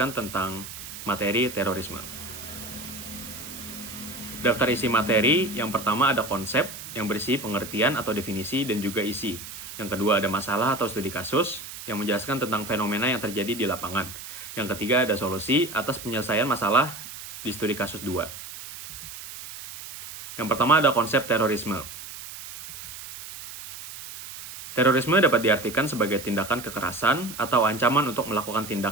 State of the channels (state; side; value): noise; right; hiss, 12 dB below the sound